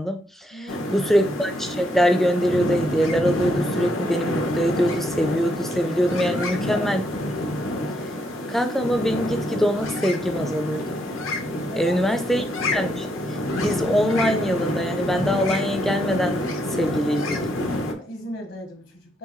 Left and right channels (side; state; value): both; normal; correlation 0.76